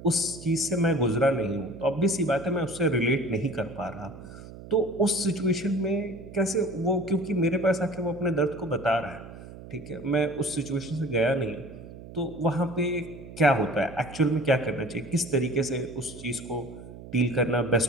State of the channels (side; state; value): right; noise; hum, 15 dB below the sound